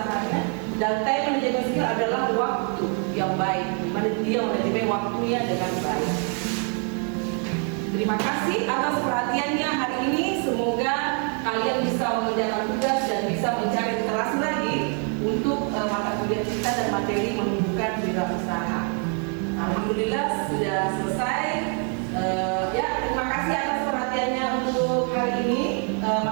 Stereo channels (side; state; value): left; quieter; 39.9 dB